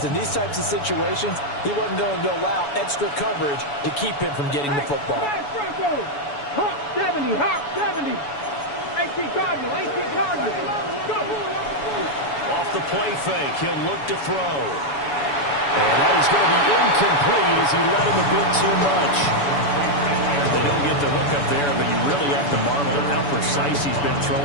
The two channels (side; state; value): right; late; 7.0 ms